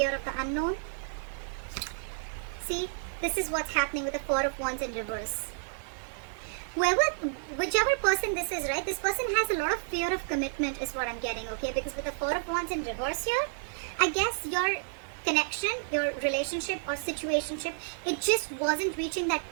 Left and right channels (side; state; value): left; silent; digital silence